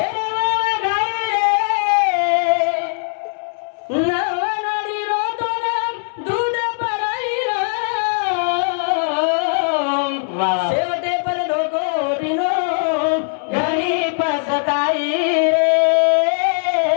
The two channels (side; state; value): right; silent; 66 dB below the other